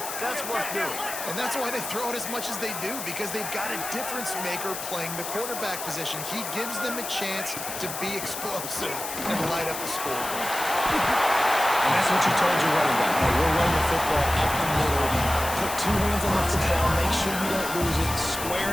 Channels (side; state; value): left; noise; hiss, 7 dB below the sound